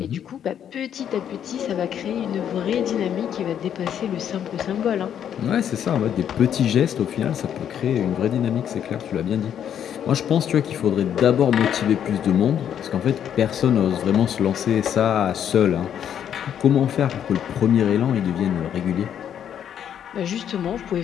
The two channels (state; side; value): quieter; right; 9.3 dB